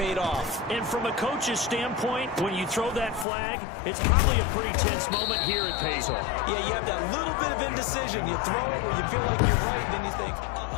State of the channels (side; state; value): right; drops out; at 3.2 s